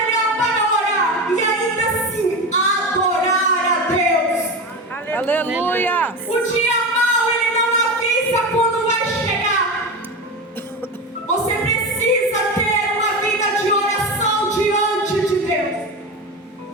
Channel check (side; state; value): both; normal; correlation 0.23